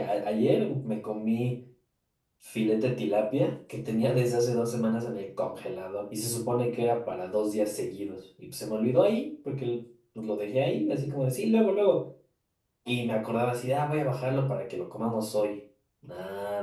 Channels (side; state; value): both; identical; correlation 1.00